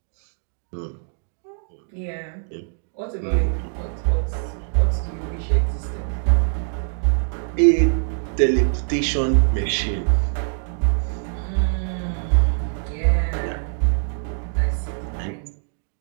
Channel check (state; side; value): silent; left; digital silence